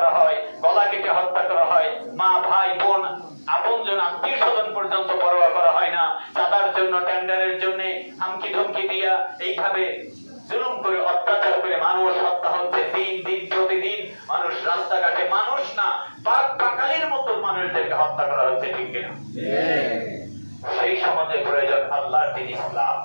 হয়, গলা কেটে হত্যা করা হয়, মা ভাই বোন আপনজন আত্মীয় স্বজন পর্যন্ত পরোয়া করা হয় না। চাঁদার জন্য, টেন্ডারের জন্য হুমকি ধমকি দিয়া এইভাবে জুলুম করে অত্যাচার করে মানুষ হত্যা হচ্ছে দিন দিন প্রতিদিন। মানুষ রাস্তাঘাটে, মানুষ না পাকালির মতো মানুষদেরকে হত্যা করা হচ্ছে, ঠিক কিনা? সেই সমাজে প্রয়োজন আল্লাহর দ্বীন ইসলাম।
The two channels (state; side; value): inverted; both; correlation -1.00